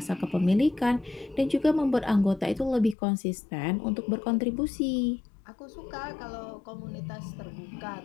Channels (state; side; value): drops out; right; at 3.0 s